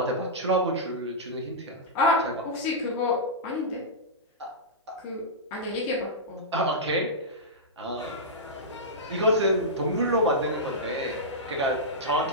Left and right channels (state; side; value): normal; both; correlation -0.13